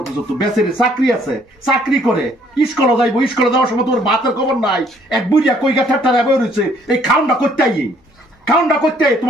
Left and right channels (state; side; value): normal; both; correlation 0.63